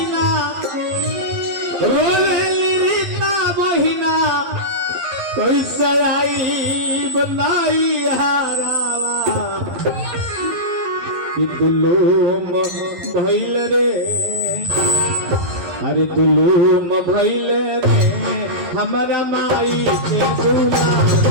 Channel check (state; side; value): late; left; 12 ms